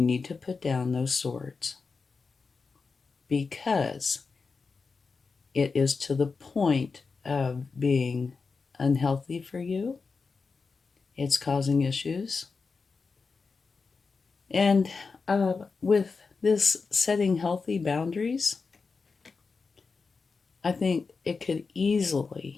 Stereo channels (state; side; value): quieter; right; 4.7 dB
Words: to put down those swords. Because it is to the point of being unhealthy for you. It's causing issues. And with this setting healthy boundaries, I think it could